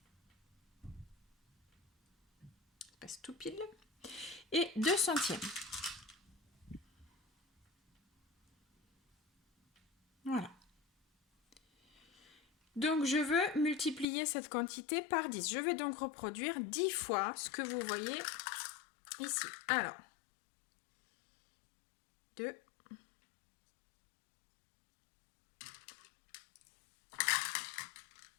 Passe tout pile. Et 2 centièmes. Voilà. Donc, je veux multiplier cette quantité par 10. Je vais donc reproduire 10 fois ce que vous voyez ici. Alors, 2.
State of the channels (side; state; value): right; drops out; at 14.1 s